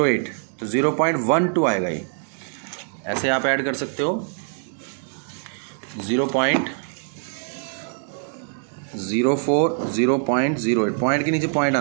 तो 0.12 आएगा। ये ऐसे आप ऐड कर सकते हो, 0.04, 0.08, पॉइंट के नीचे पॉइंट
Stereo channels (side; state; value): left; silent; 63 dB below the other